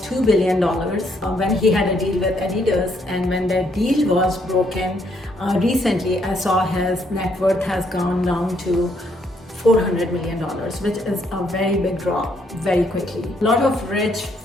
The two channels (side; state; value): both; normal; correlation 0.71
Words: $2 billion when he had a deal with Adidas, and when that deal was broken recently, I saw his net worth has gone down to $400 million, which is a very big drop very quickly. A lot of rich,